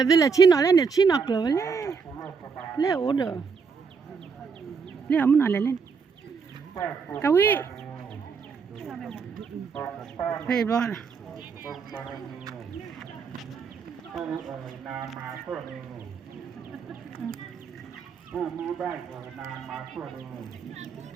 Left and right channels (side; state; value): left; quieter; 5.6 dB